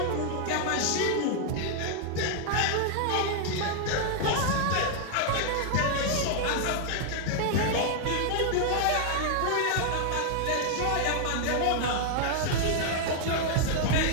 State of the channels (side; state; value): both; different; correlation 0.00